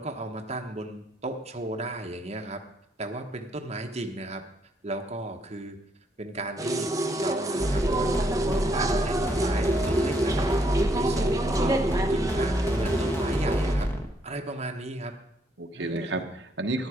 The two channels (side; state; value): both; normal; correlation 0.72